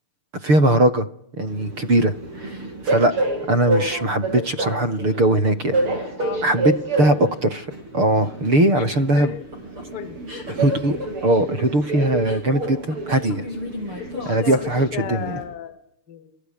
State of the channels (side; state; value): left; late; 6.7 ms